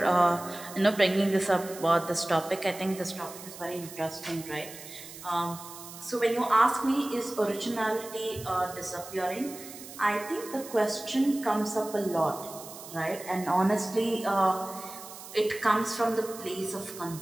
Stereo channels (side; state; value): right; noise; hiss, 14 dB below the sound